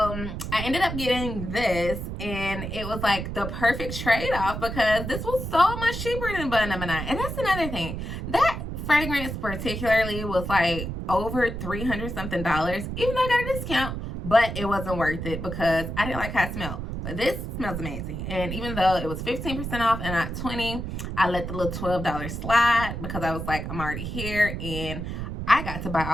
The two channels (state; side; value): noise; right; rumble, 5 dB below the sound